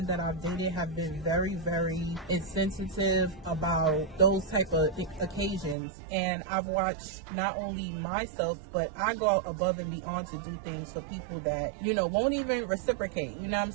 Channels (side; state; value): left; drops out; at 5.8 s